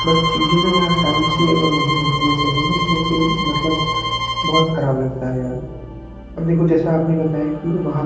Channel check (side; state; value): both; identical; correlation 1.00